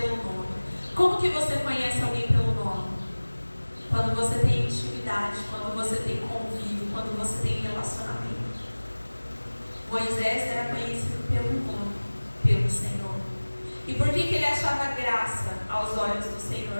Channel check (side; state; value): both; inverted; correlation -1.00